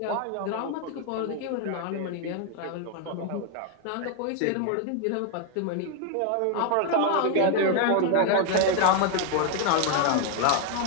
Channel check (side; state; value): both; different; correlation 0.01